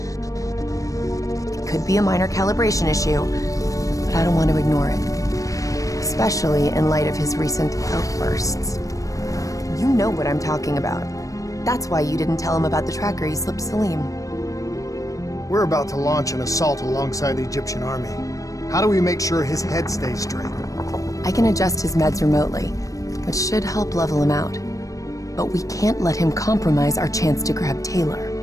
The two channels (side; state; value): right; late; 0.16 ms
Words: It could be a minor calibration issue, but I don't want to ignore it. Especially in light of his recent outbursts. You know what I'm talking about. That's why you didn't tell him about the tracker he slipped Salim. We're about to launch an assault alongside the Egyptian army. How do we make sure his head stays straight? I can adjust his meds remotely, which should help level him out. But we can't let him compromise our chance to grab Taylor.